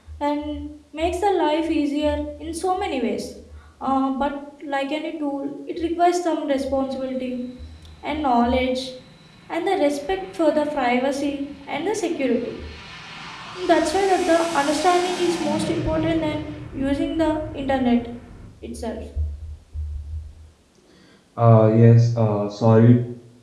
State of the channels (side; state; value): both; identical; correlation 1.00